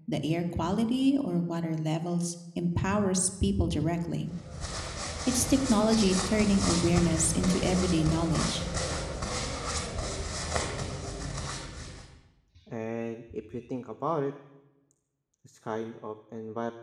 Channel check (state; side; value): identical; both; correlation 1.00